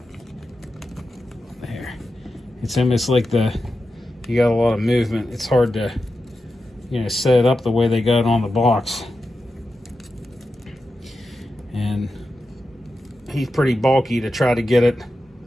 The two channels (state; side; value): normal; both; correlation 0.90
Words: There, it's almost like you got a lot of movement. It's hard to, set it up the way they got it on the box. And he's pretty bulky to try to get it